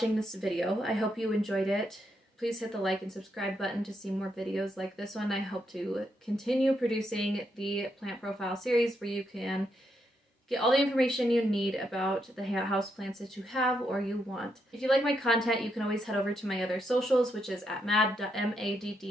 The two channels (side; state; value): both; normal; correlation 0.80